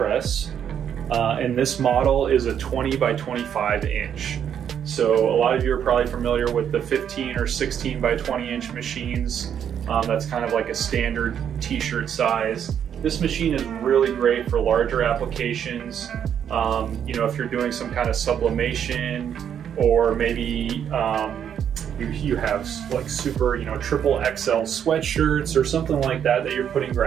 and this model is a 20 by 25 inch. So a lot of you are probably familiar with the 15 or 16 by 20 inch machines. That's kind of like a standard t-shirt size. This machine is really great for larger applications. If you're doing some kind of sublimation, or maybe you have like super, triple XL sweatshirts or something like that that you're putting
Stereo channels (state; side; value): quieter; left; 8.7 dB